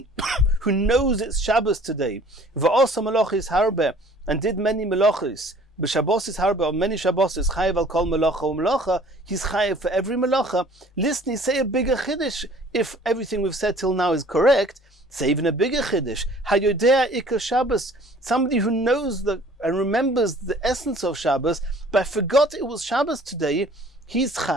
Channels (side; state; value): both; normal; correlation 0.52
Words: knows it's Shabbos today, v'osa melochis harbe, and did many melochis, b'shabbosis harbe, or many Shabbosis, chayev al kol melacha u'melacha, he's chayev for every melacha. Listen, say a bigger chiddush. If everything we've said till now is correct, say even a bigger chiddush. Hayodea ikar Shabbos. Somebody who knows and remembers the essence of Shabbos, but forgot it was Shabbos today, he's